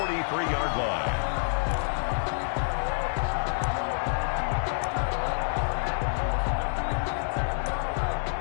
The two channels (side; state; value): right; silent; digital silence